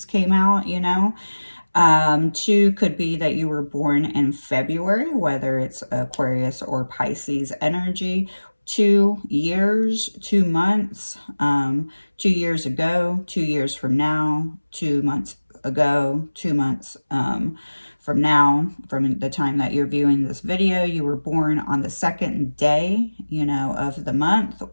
came out, you know. 2 could be that you were born in February, whether it's Aquarius or Pisces energy. 2 years, 2 months, 2 years ago, 2 years from now, 2 months ago, 2 months from now, from the time that you're viewing this video. You were born on the 2nd day, you know, of the month,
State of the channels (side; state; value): both; inverted; correlation -1.00